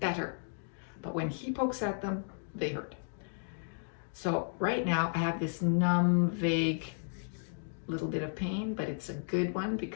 But when he pokes at them, they hurt. So right now I have this numb, vague little bit of pain, but it's a good one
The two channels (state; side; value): silent; right; digital silence